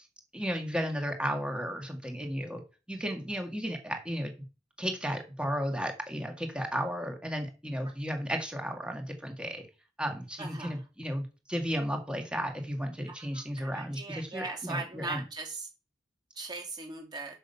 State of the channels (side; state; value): both; normal; correlation 0.80